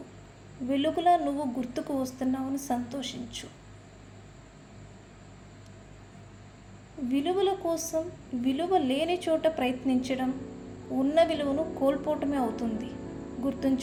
వెలుగులా నువ్వు గుర్తుకు వస్తున్నావని సంతోషించు. విలువల కోసం విలువ లేని చోట ప్రయత్నించడం ఉన్న విలువను కోల్పోవటమే అవుతుంది.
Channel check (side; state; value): both; identical; correlation 1.00